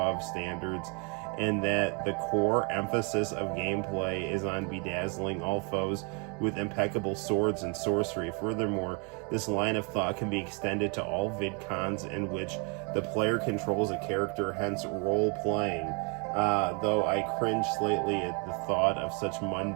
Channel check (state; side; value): quieter; left; 33.7 dB